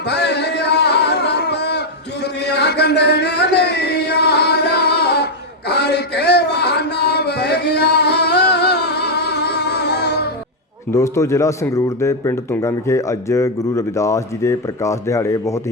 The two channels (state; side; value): normal; both; correlation 0.00